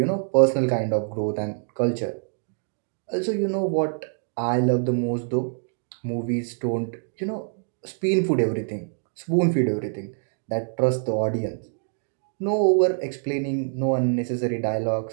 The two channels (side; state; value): left; silent; digital silence